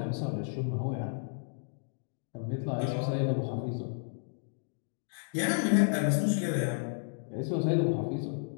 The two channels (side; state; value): right; silent; digital silence